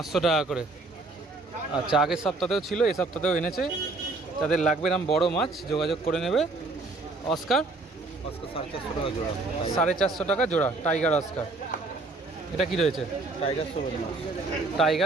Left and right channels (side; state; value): left; quieter; 3.3 dB